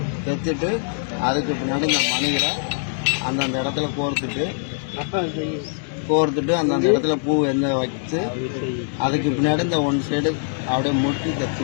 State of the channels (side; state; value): right; silent; 64 dB below the other